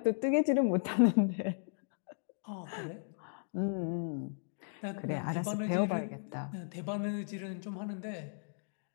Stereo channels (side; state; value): right; silent; digital silence